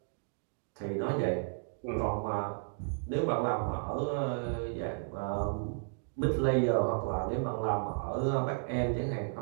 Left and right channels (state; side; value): silent; left; digital silence